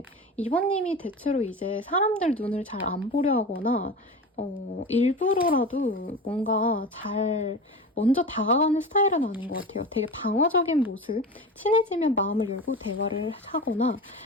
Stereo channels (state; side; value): normal; both; correlation 0.29